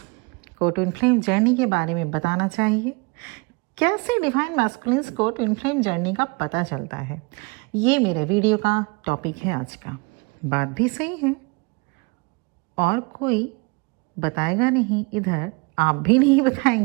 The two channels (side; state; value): left; quieter; 28.8 dB